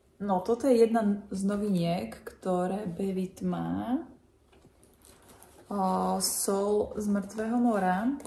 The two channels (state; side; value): identical; both; correlation 1.00